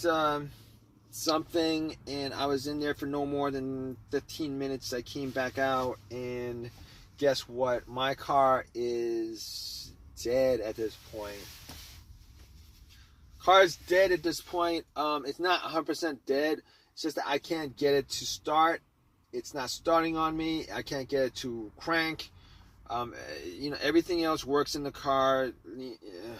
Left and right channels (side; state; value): both; identical; correlation 1.00